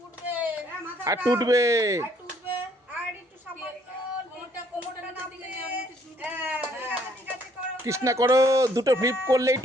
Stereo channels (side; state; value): both; normal; correlation 0.65